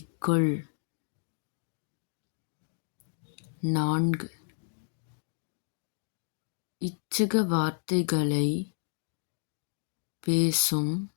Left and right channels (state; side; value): silent; right; digital silence